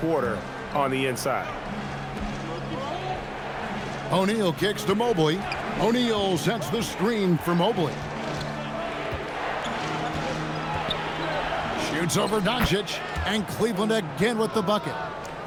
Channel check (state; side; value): identical; both; correlation 1.00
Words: on the inside. O'Neal kicks to Mobley. O'Neal sets the screen for Mobley. Shoots over Doncic, and Cleveland again with the bucket.